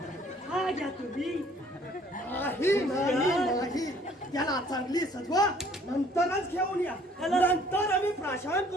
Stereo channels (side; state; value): both; normal; correlation 0.58